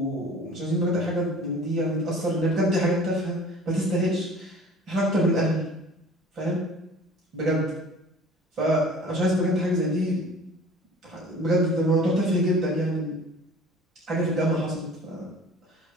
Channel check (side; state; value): both; normal; correlation 0.45